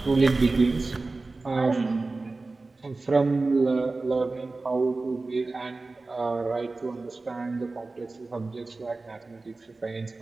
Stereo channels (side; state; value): left; quieter; 3.5 dB